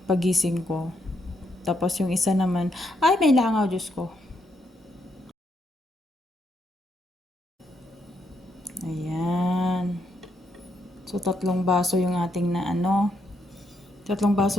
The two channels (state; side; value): normal; both; correlation 0.77